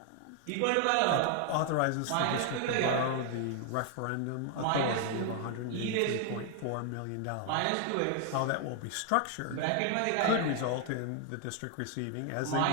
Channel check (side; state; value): both; different; correlation 0.00